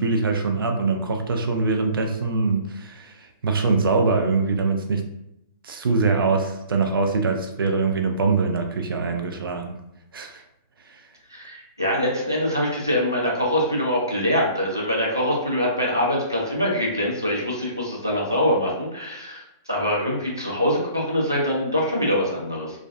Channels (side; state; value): both; inverted; correlation -0.54